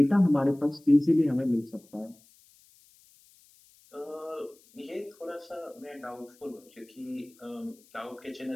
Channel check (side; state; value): left; noise; hiss, 29 dB below the sound